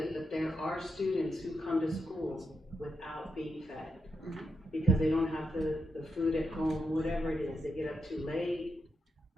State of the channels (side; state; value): both; normal; correlation 0.84